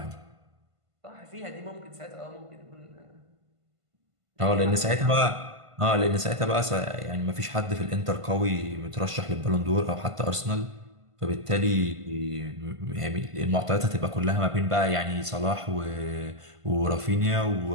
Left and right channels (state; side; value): late; left; 1.5 ms